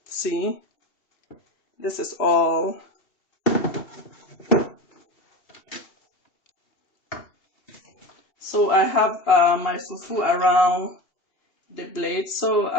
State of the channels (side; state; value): right; late; 2.7 ms